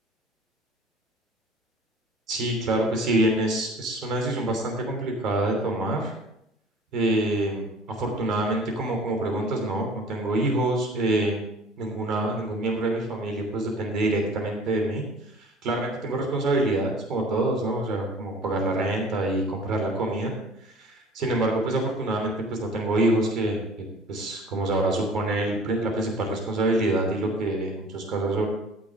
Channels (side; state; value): both; normal; correlation 0.47